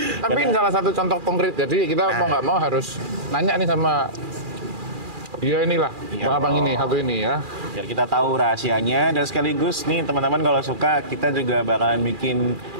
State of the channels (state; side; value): late; left; 2.4 ms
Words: Tapi ini salah satu contoh konkret. Jadi kita mau nggak mau harus nanya nih sama dia inilah, abang ini satu ini ya. Biar kita tahu rahasianya dan sekaligus nih teman-teman kalau suka kita juga bakalan bikin